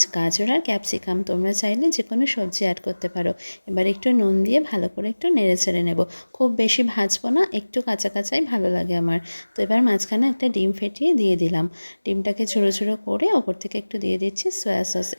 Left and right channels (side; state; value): both; inverted; correlation -1.00